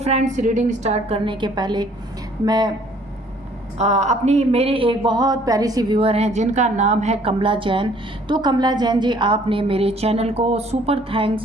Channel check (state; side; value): normal; both; correlation 0.59